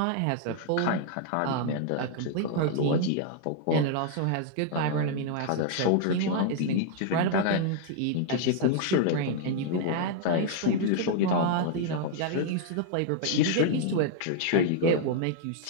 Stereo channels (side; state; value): both; different; correlation 0.00